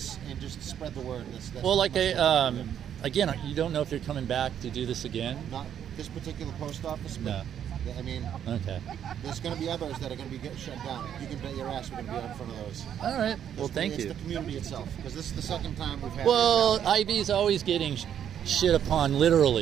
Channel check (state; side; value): quieter; left; 9.4 dB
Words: and just spread the word. That's Well, like much what we do. again, you don't know if you're coming back to do this again. Not this particular post office, but No. I mean, Okay. there's going to be others that are going to be shut down. You can bet your ass we're going to be out in front of those. All right. Well, thank It's you. the community itself, because this is the second time we've had. Well, it. IB's always getting shit upon